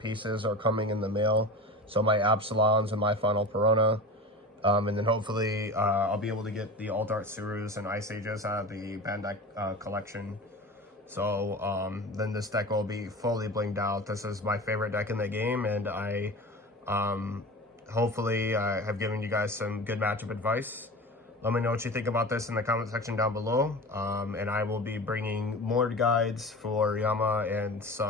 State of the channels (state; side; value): normal; both; correlation 0.32